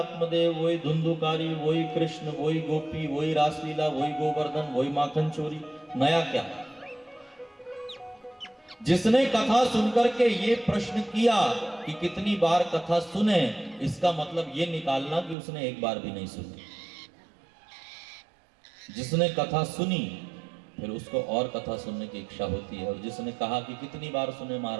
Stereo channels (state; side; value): drops out; left; at 15.4 s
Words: वही धुंधुकारी, वही कृष्ण, वही गोपी, वही रासलीला, वही गोवर्धन, वही माखन चोरी, नया क्या? जिसने कथा सुनकर के ये प्रश्न किया कि कितनी बार कथा सुने, इसका मतलब ये निकालना कि उसने एक बार भी नहीं सुनी। जिसने कथा सुनी फिर उसको और कथा सुनने की इच्छा होती है, और जिसने कहा कि कितनी बार सुने